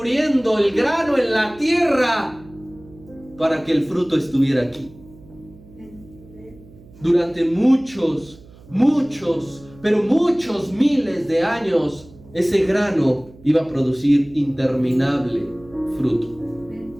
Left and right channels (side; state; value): right; noise; hum, 23 dB below the sound